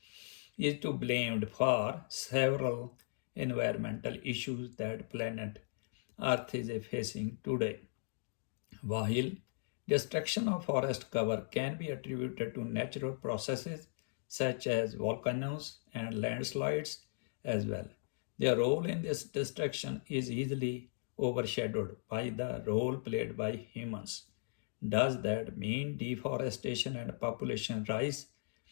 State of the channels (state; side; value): silent; right; digital silence